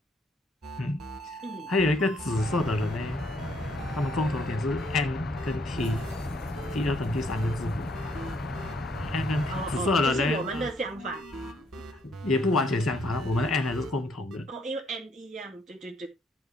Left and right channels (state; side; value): normal; both; correlation 0.69